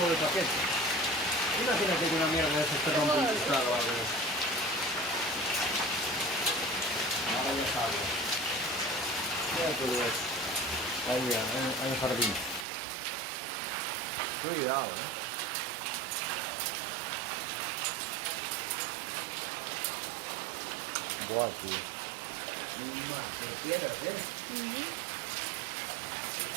de paquete. Imagínate que una mierda de eso te rompe un cristal o algo de eso. Ahora ya sabes. Mira todo eso. Ahí en el jardín. Cuidado, Buah, tío. Más, pero piedras,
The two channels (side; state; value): left; drops out; at 12.7 s